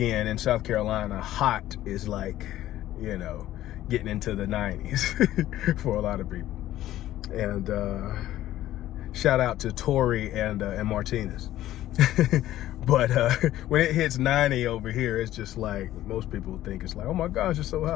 in South Carolina, hot is like, you know, getting into the 90s for a lot of people. And shout out to Tori and Martinez. But when it hits 90 over here, it's just like, most people think it's like, oh my gosh, it's so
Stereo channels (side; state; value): right; quieter; 13.9 dB